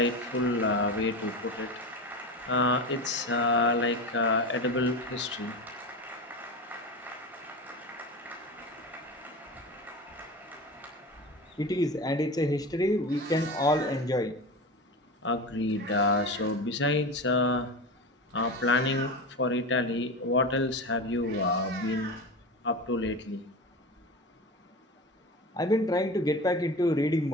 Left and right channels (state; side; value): normal; both; correlation 0.26